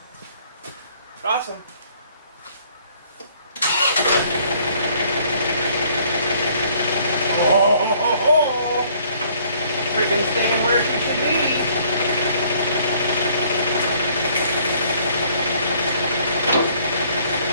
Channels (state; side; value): inverted; both; correlation -0.61